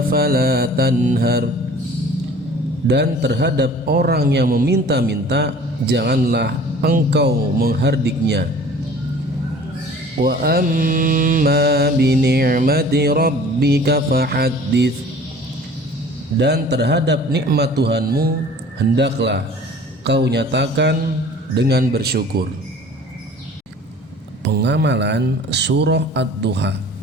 fala tanhar, dan terhadap orang yang meminta-minta janganlah engkau menghardiknya. Wa amma bi ni'mati rabbika fahaddits, dan terhadap nikmat Tuhanmu hendaklah kau nyatakan dengan bersyukur. Pengamalan surah Ad-Duha.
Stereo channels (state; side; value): normal; both; correlation 0.47